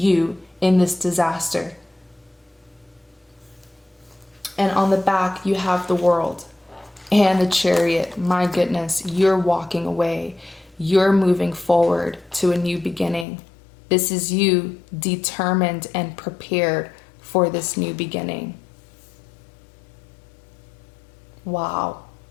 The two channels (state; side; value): drops out; right; at 13.2 s